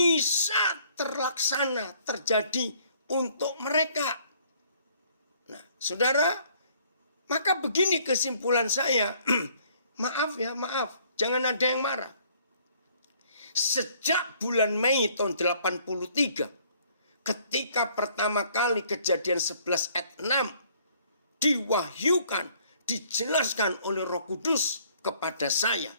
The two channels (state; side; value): inverted; both; correlation -0.61